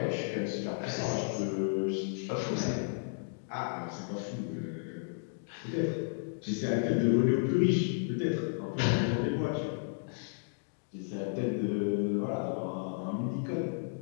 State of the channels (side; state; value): right; silent; digital silence